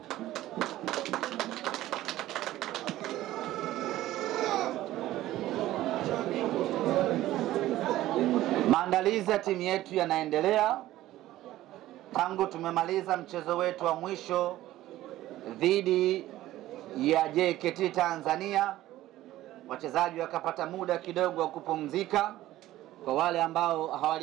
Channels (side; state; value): left; quieter; 15.0 dB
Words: Maandalizi ya timu yetu yanaendelea tangu tumemaliza mchezo wetu wa mwisho dhidi ya JKT Tanzania. Wachezaji wakapata muda kidogo wa kupumzika kwa wale ambao